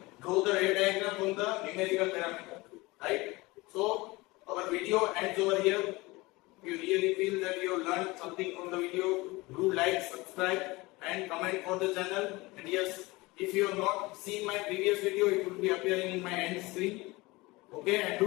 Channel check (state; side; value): quieter; right; 22.3 dB